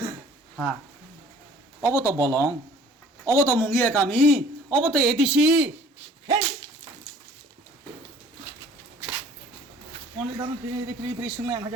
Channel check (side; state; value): both; normal; correlation 0.52